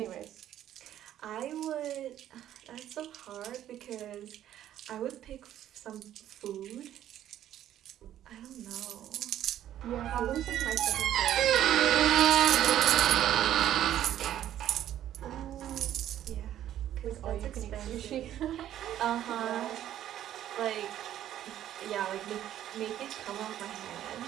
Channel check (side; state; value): left; quieter; 11.7 dB